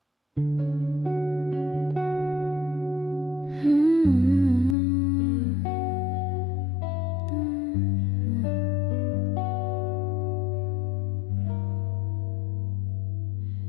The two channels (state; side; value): drops out; right; at 4.8 s